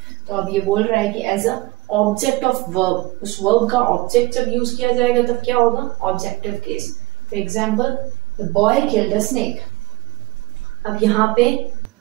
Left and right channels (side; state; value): left; quieter; 19.4 dB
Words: तो अब ये बोल रहा है कि as a object of verb, उस वर्ब का ऑब्जेक्ट जब यूज किया जाएगा तब क्या होगा? Objective case. For example, the boy killed a snake. अब यहाँ पे